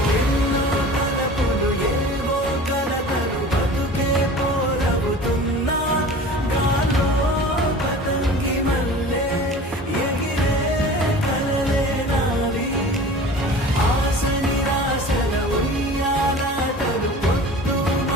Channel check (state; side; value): normal; both; correlation 0.40